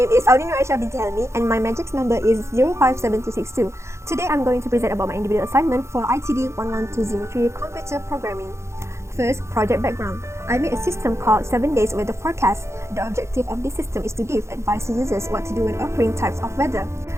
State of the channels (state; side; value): late; left; 0.13 ms